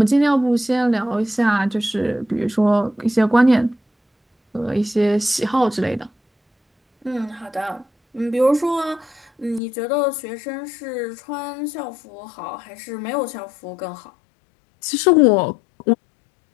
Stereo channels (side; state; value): right; drops out; at 9.6 s